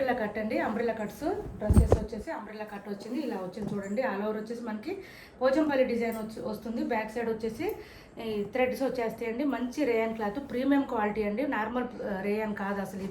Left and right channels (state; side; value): identical; both; correlation 1.00